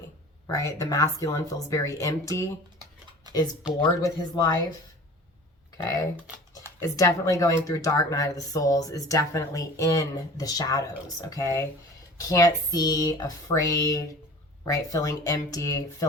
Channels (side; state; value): both; normal; correlation 0.42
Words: right? The masculine feels very empty, is bored with his life, okay? Is definitely going through dark night of the souls, is definitely in the shadows, okay? Can't see, afraid, right? Feeling empty,